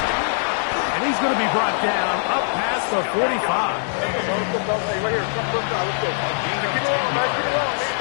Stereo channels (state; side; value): silent; right; 62 dB below the other